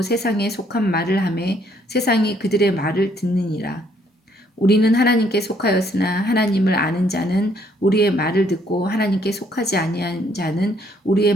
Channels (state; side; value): normal; both; correlation 0.67